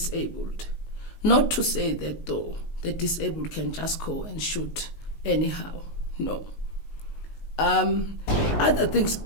Not to say that, though, the disabled can just go and shoot anyhow. No. Other things,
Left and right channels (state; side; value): late; right; 19 ms